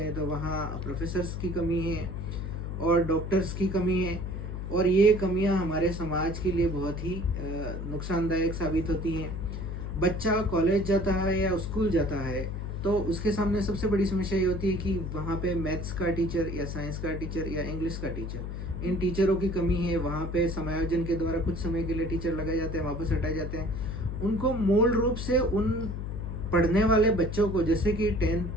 तो वहाँ प्रोफेसर्स की कमी है और डॉक्टर्स की कमी है, और ये कमियाँ हमारे समाज के लिए बहुत ही नुकसानदायक साबित होती हैं। बच्चा कॉलेज जाता है या स्कूल जाता है तो उसके सामने सबसे बड़ी समस्या ये होती है कि वहाँ पे मैथ्स का टीचर या साइंस का टीचर या इंग्लिश का टीचर, इन टीचरों की कमी है। वहाँ पे समायोजन के द्वारा कुछ समय के लिए टीचर लगाए जाते हैं, वापस हटाए जाते हैं। उनको मूल रूप से उन पढ़ने वाले बच्चों को, जैसे कि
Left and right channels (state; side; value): noise; left; hum, 5 dB below the sound